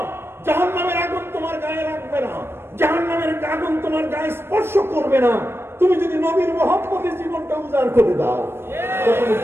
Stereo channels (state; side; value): late; left; 0.12 ms